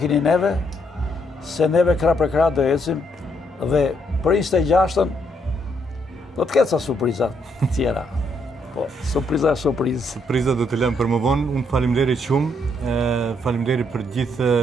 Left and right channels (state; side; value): normal; both; correlation 0.73